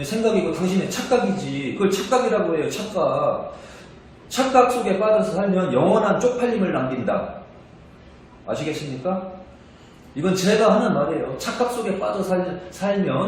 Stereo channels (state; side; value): identical; both; correlation 1.00